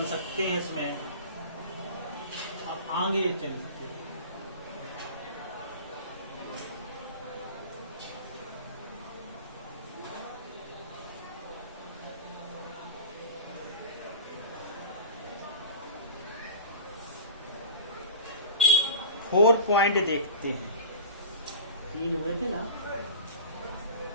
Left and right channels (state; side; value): inverted; both; correlation -0.36